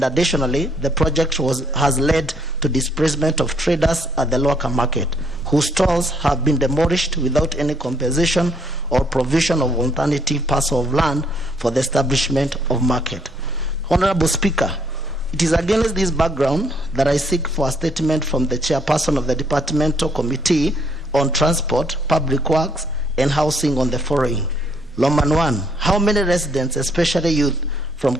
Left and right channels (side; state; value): both; normal; correlation 0.68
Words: additionally, the project has led to displacement of traders at the local market, whose stalls have been demolished without any compensation or provision of alternative parcel of land for the establishment of market. Honorable Speaker, it is against this background that I seek for a statement from the chairperson of the Departmental Committee on Transport, Public Works, and Housing on the following. Loman 1, how many residents, especially youth, from